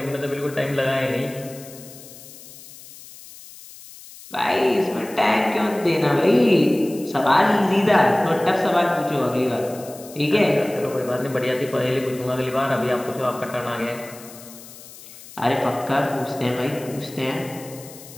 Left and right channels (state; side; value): noise; left; hiss, 18 dB below the sound